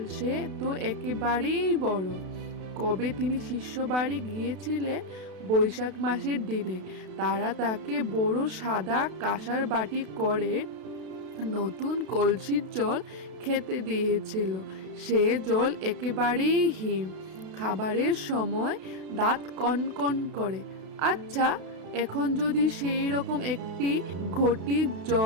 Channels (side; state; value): left; late; 32 ms